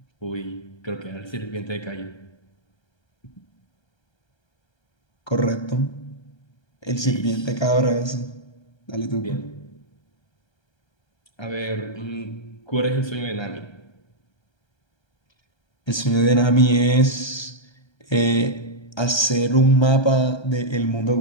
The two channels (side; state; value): right; late; 1.3 ms